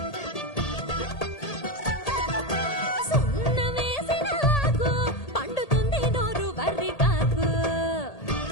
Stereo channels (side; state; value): right; late; 1.8 ms